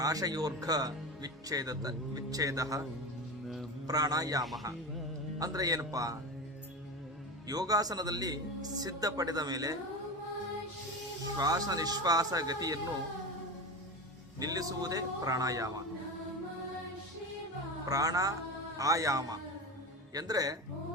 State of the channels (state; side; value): normal; both; correlation 0.25